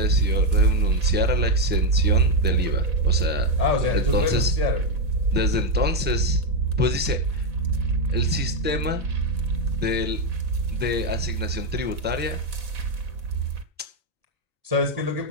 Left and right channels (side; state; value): both; normal; correlation 0.04